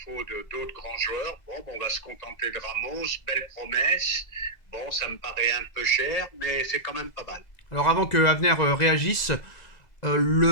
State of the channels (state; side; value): late; right; 2.0 ms